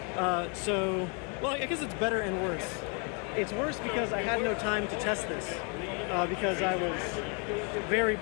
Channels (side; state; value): right; quieter; 36.0 dB